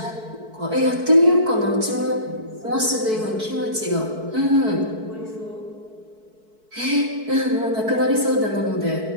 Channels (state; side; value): late; left; 4.6 ms